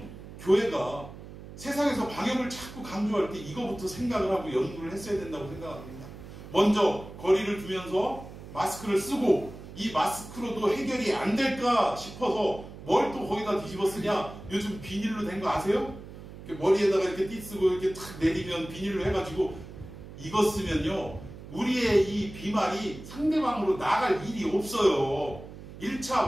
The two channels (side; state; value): right; noise; hum, 14 dB below the sound